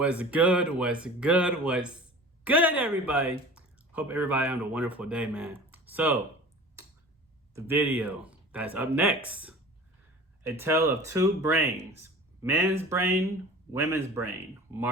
good? What's good? What's good, everybody? Hope everybody having a wonderful day, man. So, the video that's up next, A Tale of Two Brains. Men's brain, women's brain.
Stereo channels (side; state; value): both; normal; correlation 0.40